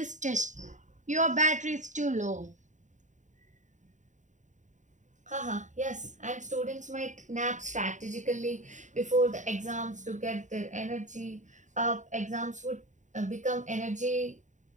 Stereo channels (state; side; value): late; left; 0.36 ms